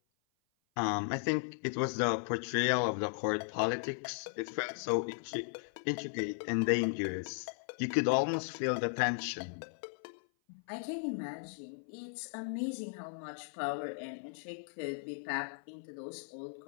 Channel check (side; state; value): right; silent; 54 dB below the other